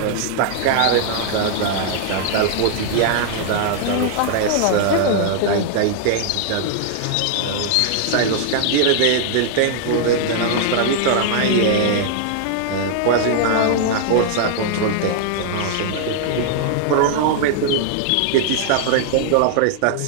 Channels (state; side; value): different; both; correlation -0.01